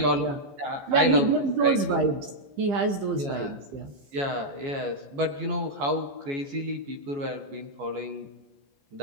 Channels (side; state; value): left; late; 15 ms